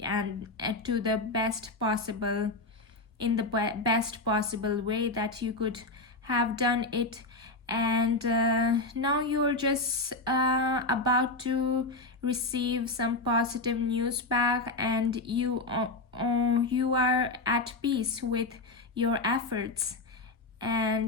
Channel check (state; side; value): quieter; right; 3.1 dB